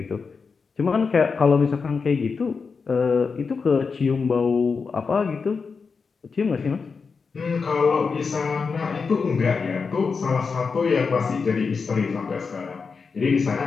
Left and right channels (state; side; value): quieter; right; 5.1 dB